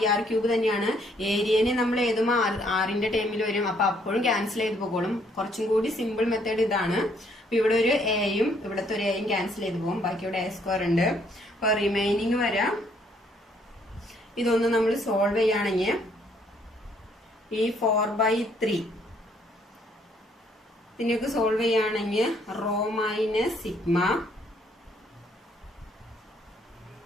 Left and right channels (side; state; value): both; normal; correlation 0.67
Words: ആർ ക്യൂബ് തന്നെയാണ്. ഏരിയനെ നമ്മൾ ഏതും ആറിന്റെ ടൈമിൽ വരും, അപ്പൊ അപ്പോഴും ക്യാൻസൽ ചെയ്ത് പോക്കോളും. കുറച്ചും കൂടി സിമ്പിൾ മെത്തേഡ് ഇതാണ്. അപ്പൊ ഇവിടെ ഒരു എയും ഇവിടുത്തെ ഒരു എയും ക്യാൻസൽ ചെയ്ത് പോകും, ബാക്കി ഇവിടെ എ സ്ക്വയർ ഉണ്ട്. അപ്പൊ റിമൈനിങ് വരാം. ഇതൊന്ന് നമ്മൾ സോൾവ് ചെയ്യുകയാണെങ്കിൽ ഈ 4/3 ഇതിനൊക്കെ സോൾവ് ചെയ്യുകയാണെങ്കിൽ rho minus sigma